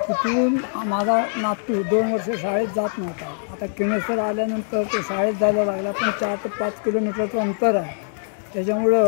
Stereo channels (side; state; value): right; silent; 64 dB below the other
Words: तिथून माझा नातू 2 वर्ष शाळेत जात नव्हता. आता किणेसर आल्यानंतर तो शाळेत जायला लागला, पण 4 ते 5 किलोमीटरचं अंतर आहे.